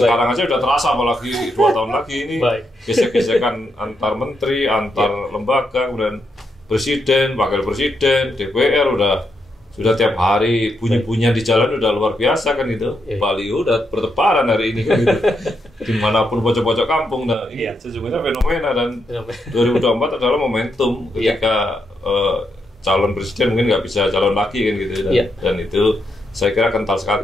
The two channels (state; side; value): normal; both; correlation 0.81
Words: aja udah terasa, apalagi 2 tahun lagi ini gesek-gesekan antar menteri, antar lembaga, kemudian presiden, wakil presiden, DPR sudah tiap hari bunyi-bunyian di jalan udah luar biasa kan gitu. Baliho udah bertebaran hari ini kan gitu. Dimanapun pojok-pojok kampung. Nah ini sesungguhnya fenomena, dan 2024 adalah momentum ketika calon presiden mungkin nggak bisa calon lagi kan gitu. Dan itu saya kira kental